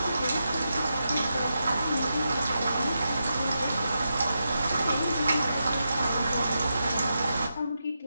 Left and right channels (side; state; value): both; inverted; correlation -0.86